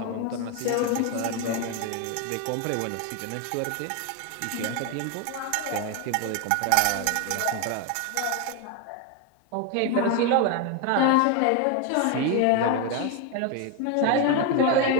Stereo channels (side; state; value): both; different; correlation 0.01